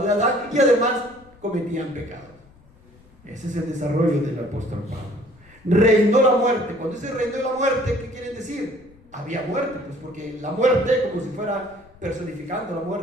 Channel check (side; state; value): left; noise; rumble, 27 dB below the sound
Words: de Adán, y además cometían pecado. Ese es el desarrollo del apóstol Pablo. Reinó la muerte. Cuando dice reinó la muerte, ¿qué quiere decir? Había muerte, pues porque la muerte, como si fuera personificando la